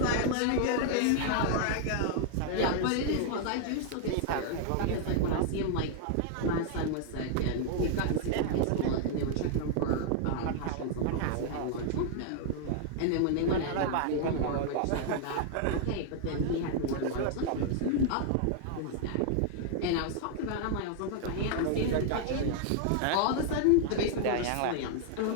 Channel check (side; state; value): both; different; correlation 0.00